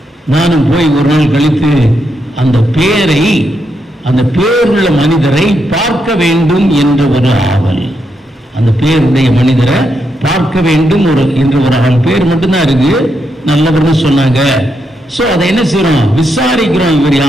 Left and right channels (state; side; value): normal; both; correlation 0.81